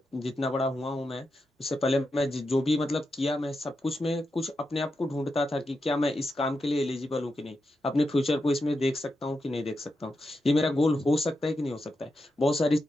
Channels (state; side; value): normal; both; correlation 0.87